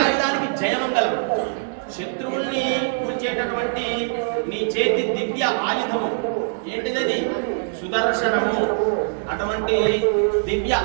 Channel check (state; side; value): silent; left; digital silence